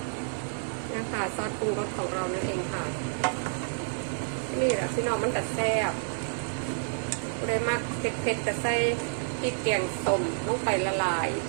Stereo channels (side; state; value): left; silent; 58 dB below the other